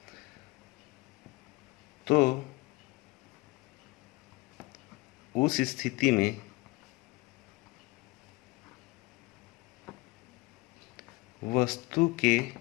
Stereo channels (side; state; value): right; quieter; 23.1 dB